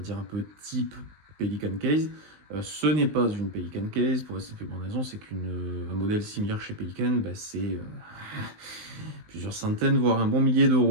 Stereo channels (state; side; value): late; left; 19 ms